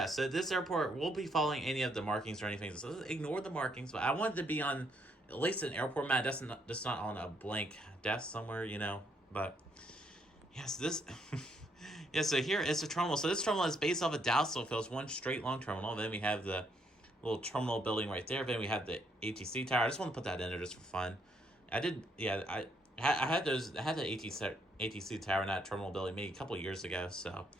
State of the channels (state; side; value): normal; both; correlation 0.72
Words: so this airport will be following any of the markings or anything. So ignore the markings, but I wanted to be on at least an airport map. That's not on a blank desk somewhere, you know. But yes, yeah. So here is the terminal. So this terminal is based off of Dallas Love Field. It's one straight long terminal. Then we have the little terminal building right there. Then we have the ATC tower. I just want to put that in there just for fun. I had the ATC tower in that terminal building maybe a couple years ago. So